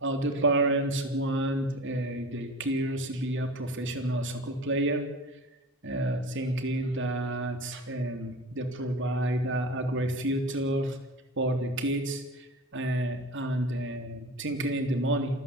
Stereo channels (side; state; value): both; normal; correlation 0.36